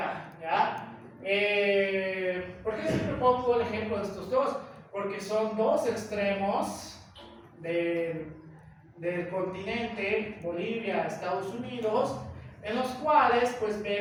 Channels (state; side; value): identical; both; correlation 1.00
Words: ¿ya? ¿Por qué siempre pongo el ejemplo de estos dos? Porque son dos extremos del continente, Bolivia, Estados Unidos, en los cuales pues